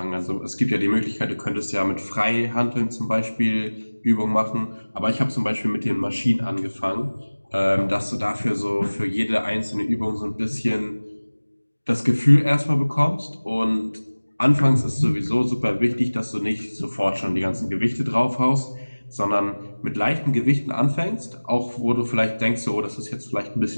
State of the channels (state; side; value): inverted; both; correlation -1.00